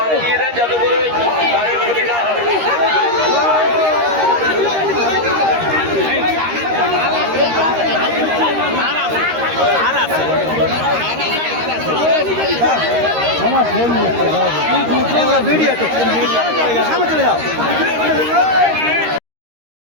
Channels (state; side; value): late; left; 13 ms